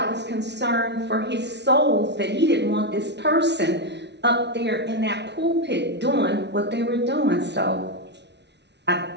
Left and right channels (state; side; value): late; left; 0.50 ms